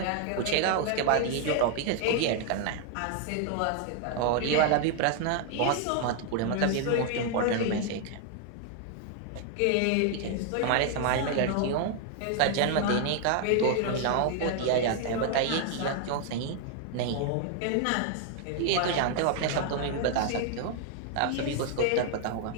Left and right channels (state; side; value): different; both; correlation 0.00